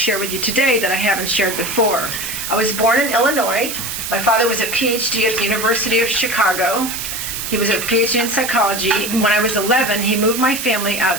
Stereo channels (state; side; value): noise; right; hiss, 5 dB below the sound